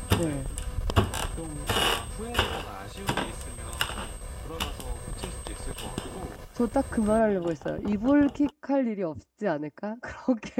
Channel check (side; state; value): both; identical; correlation 1.00